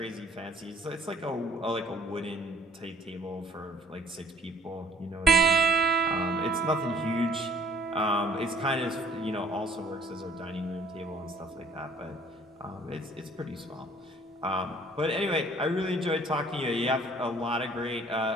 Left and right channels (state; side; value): normal; both; correlation 0.55